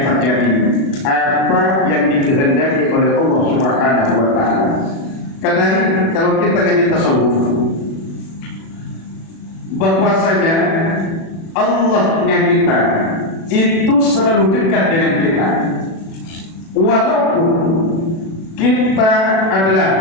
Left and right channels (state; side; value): late; right; 36 ms